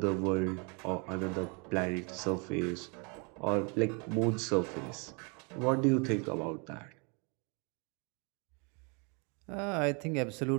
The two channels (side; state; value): left; quieter; 33.3 dB